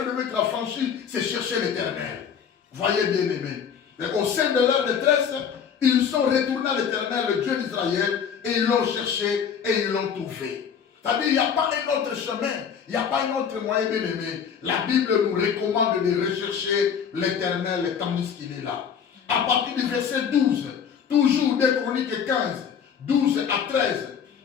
il devait être affranchi, c'est chercher l'Éternel. Voyez bien aimé. Au sein de leur détresse, ils sont retournés à l'Éternel, le Dieu d'Israël, et ils l'ont cherché et ils l'ont trouvé. C'est-à-dire, il n'y a pas un autre chemin, il n'y a pas un autre moyen, bien aimé. La Bible nous recommande de rechercher l'Éternel tandis qu'il est là. À partir du verset 12, toujours des Chroniques 15, 12 à 13,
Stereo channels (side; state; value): right; quieter; 7.4 dB